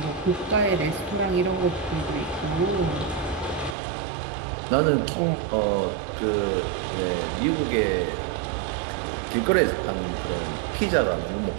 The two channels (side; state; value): left; drops out; at 3.8 s